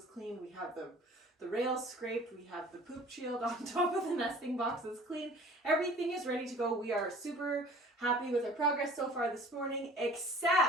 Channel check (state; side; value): normal; both; correlation 0.48